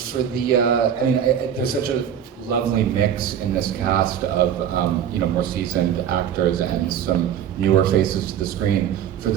the, there's such a lovely mix in this cast of, more seasoned actors and some newer faces to the screen. For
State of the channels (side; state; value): left; quieter; 9.2 dB